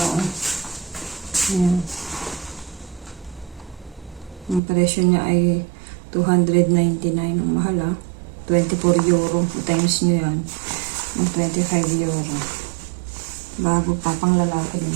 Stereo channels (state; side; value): drops out; left; at 4.6 s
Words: Ayan. Ang presyo niya ay 299. Ang mahal 24 euro. Times nyo yan. 25 euro. Bago pa. Pang lalaki